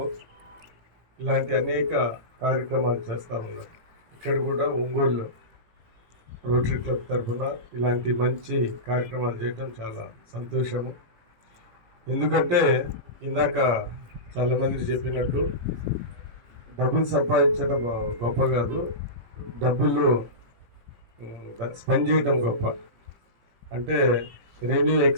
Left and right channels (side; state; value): left; late; 18 ms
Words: ఇలాంటి అనేక కార్యక్రమాలు చేస్తూ ఉన్నారు. ఇక్కడ కూడా ఒంగోలు రోటరీ క్లబ్ తరఫున ఇలాంటి మంచి కార్యక్రమాలు చేయటం చాలా సంతోషము. ఎందుకంటే ఇందాక చాలామంది చెప్పినట్టు డబ్బులు సంపాదించడం గొప్ప కాదు, డబ్బులు స్పెండ్ చేయడం గొప్ప. అంటే రెవెన్యూ